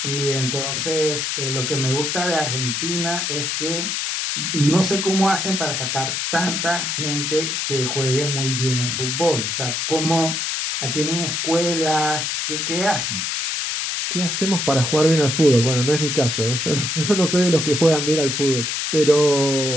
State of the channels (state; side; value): noise; left; hiss, 1 dB below the sound